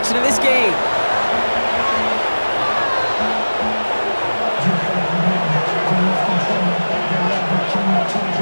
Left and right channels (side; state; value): both; inverted; correlation -1.00